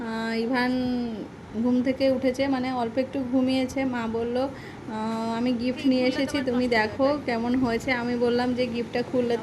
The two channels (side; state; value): both; identical; correlation 1.00